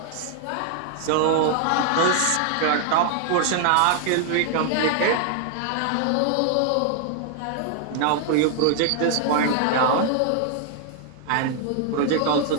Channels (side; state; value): both; different; correlation 0.00